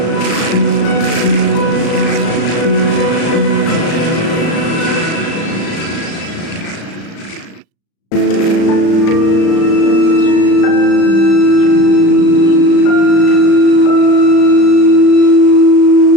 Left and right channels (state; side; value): late; right; 36 ms